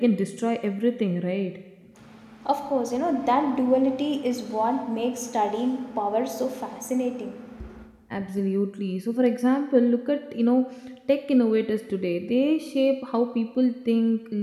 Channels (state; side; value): identical; both; correlation 1.00